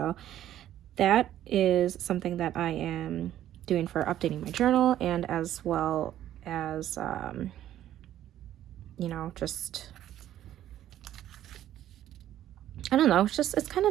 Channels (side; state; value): left; quieter; 12.1 dB